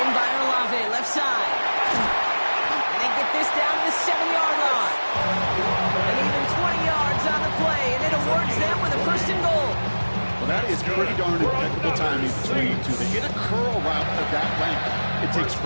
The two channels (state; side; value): inverted; both; correlation -1.00